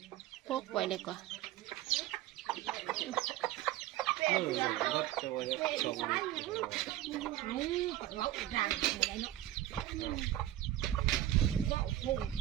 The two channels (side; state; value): left; quieter; 13.9 dB